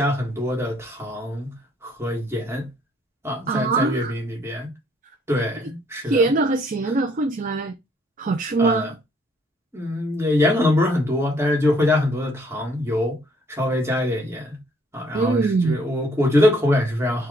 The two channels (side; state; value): both; normal; correlation 0.64